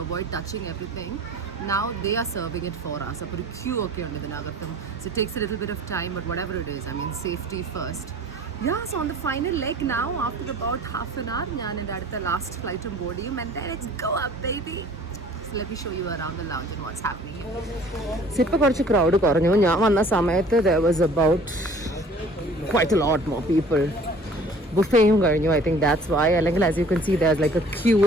avoid touching everything, now they are serving it for us. അപ്പോൾ ഒരു ക്യൂ ഒക്കെ ഉണ്ട് ഇതിനകത്തും. So it takes a little bit of time, but whatever it is, I mean safety first. Yeah, so on the final leg now, after about half an hour, ഞാൻ എൻ്റെ അടുത്ത ലാസ്റ്റ് ഫ്ലൈറ്റും ബോർഡ് ചെയ്യും and then it's go up baby. Let me show you around the lounge and what's happening here. ഇപ്പോൾ കുറച്ച് ക്രൗഡ് കുറഞ്ഞു. ഞാൻ വന്ന സമയത്ത് there was about quite a lot more people. ബുഫേയും കഴിഞ്ഞു. I think that's why. അല്ലെങ്കിൽ as you can see there's like a queue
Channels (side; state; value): both; normal; correlation 0.50